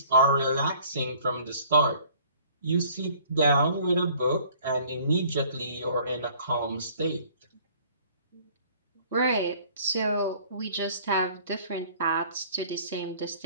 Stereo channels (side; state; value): both; inverted; correlation -0.54